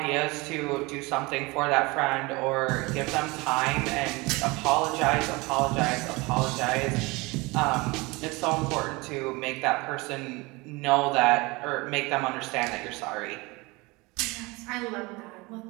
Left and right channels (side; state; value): left; quieter; 24.3 dB